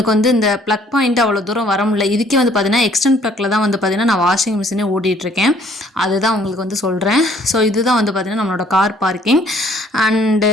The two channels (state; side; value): normal; both; correlation 0.61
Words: வந்து இந்த ப்ளக் பாயிண்ட் அவ்வளோ தூரம் வர முடியல. இதுக்கே வந்து பார்த்திங்கன்னா எக்ஸ்டென்ட் ப்ளக்கில் தான் வந்து பார்த்திங்கன்னா நான் வாஷிங் மிஷினே ஓட்டிகிட்ருக்கேன். அதுதான் உங்களுக்கு வந்து சொல்கிறேன். ஸோ இதுதான் வந்து பார்த்திங்கன்னா நம்மளோட கார் பார்க்கிங். அண்டு